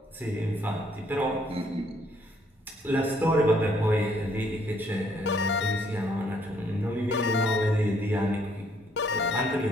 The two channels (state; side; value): normal; both; correlation 0.67